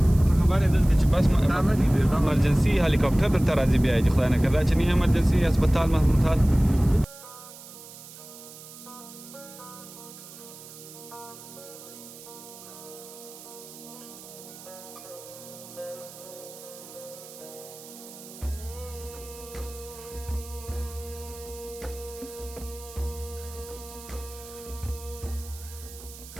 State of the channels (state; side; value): noise; right; hiss, 16 dB below the sound